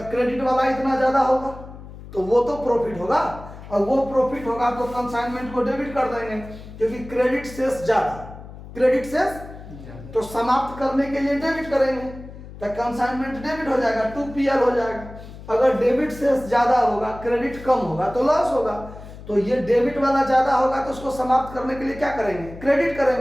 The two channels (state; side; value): noise; left; hum, 15 dB below the sound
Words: क्रेडिट वाला इतना ज्यादा होगा, तो वो तो प्रॉफिट होगा। और वो प्रॉफिट होगा तो कंसाइनमेंट को डेबिट कर देंगे, क्योंकि क्रेडिट शेष ज्यादा, क्रेडिट शेष तो समाप्त करने के लिए डेबिट करेंगे, तो कंसाइनमेंट डेबिट हो जाएगा, 2PL हो जाएगा। अगर डेबिट शेष ज्यादा होगा, क्रेडिट कम होगा तो लॉस होगा। तो ये डेबिट वाला ज्यादा होगा, तो उसको समाप्त करने के लिए क्या करेंगे, क्रेडिट